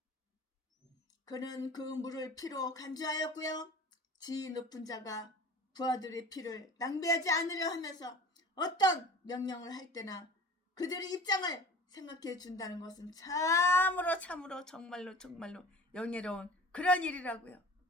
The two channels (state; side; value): normal; both; correlation 0.41